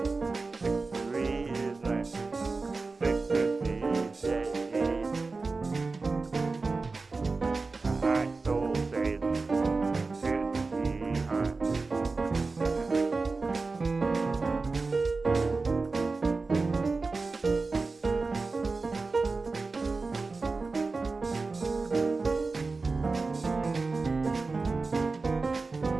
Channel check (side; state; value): left; quieter; 3.9 dB